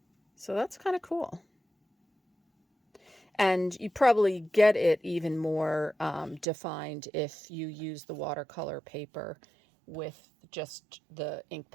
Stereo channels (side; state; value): left; drops out; at 6.5 s